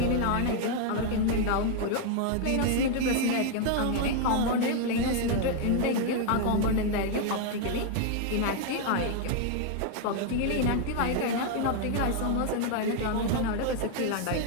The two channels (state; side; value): different; both; correlation 0.00